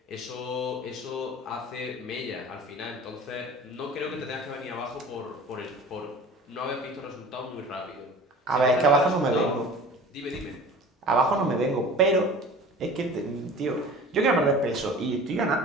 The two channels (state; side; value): normal; both; correlation 0.41